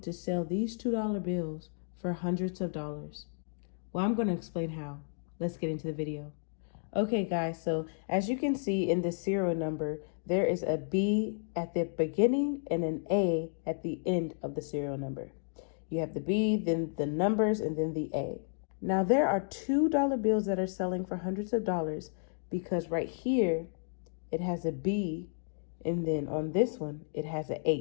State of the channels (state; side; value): silent; right; digital silence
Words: sell these $2 bills for hundreds of dollars. Well, I'm going to explain how. Let's get into the video. Okay, guys, so as you can see in the serial number, there is a B at the beginning and an A at the end of the serial number. You have the B, then the numbers, and then the A. Now, there are $2 bills that are selling for hundreds of dollars because right here, it has a B, and then on this one, it has a